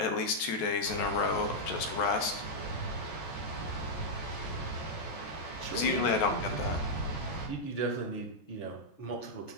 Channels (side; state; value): right; late; 14 ms